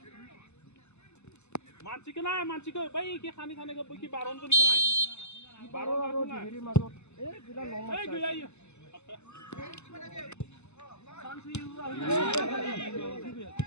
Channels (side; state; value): right; late; 0.82 ms